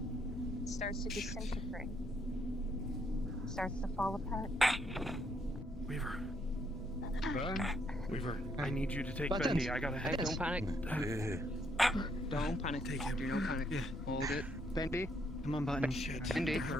it starts to disintegrate. It starts to fall apart. Weaver. Weaver, I need you to take Buttons. Bendy. I gotta head. Don't panic. Don't panic. Take him. Do no panic. Yeah. Hold it. Bendy. Come on, Button. Bendy.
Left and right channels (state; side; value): noise; left; rumble, 13 dB below the sound